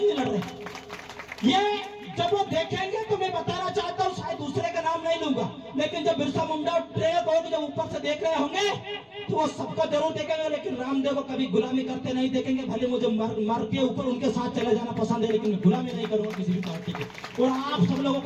नहीं लड़ रहे। ये जब वो देखेंगे तो मैं बताना चाहता हूँ, शायद दूसरे का नाम नहीं लूंगा, लेकिन जब बिरसा मुंडा और ट्रेक होगी, जब ऊपर से देख रहे होंगे तो वो सबको जरूर देखेंगे, लेकिन रामदेव को कभी गुलामी करते नहीं देखेंगे। भले मुझे मर के ऊपर उनके साथ चले जाना पसंद है, लेकिन मैं गुलामी नहीं करूंगा किसी भी पार्टी की। और आप सब लोगों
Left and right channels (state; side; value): identical; both; correlation 1.00